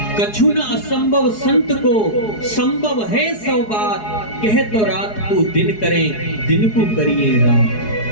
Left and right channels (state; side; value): late; right; 4.7 ms